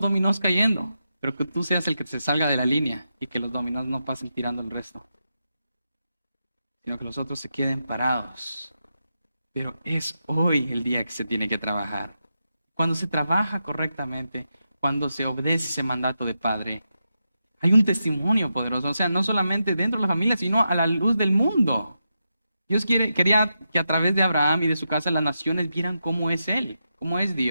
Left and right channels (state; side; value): inverted; both; correlation -0.87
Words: dominós cayendo, pero que tú seas el que se salga de la línea y que los dominós no pasen tirando el resto, sino que los otros se queden parados. Pero es hoy el día que se tiene que trabajar. Cuando se trabaja correctamente, cuando se obedece ese mandato de padre, hay un testimonio poderoso, o sea, no solamente dentro de la familia, sino a la luz del mundo. Dios quería que a través de Abraham y de su casa las naciones vieran cómo es Él, cómo es